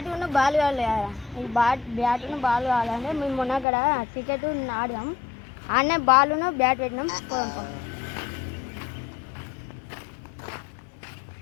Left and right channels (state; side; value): drops out; right; at 3.7 s